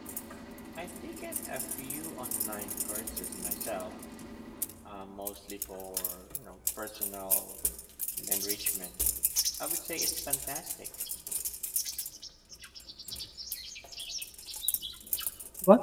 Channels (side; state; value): both; identical; correlation 1.00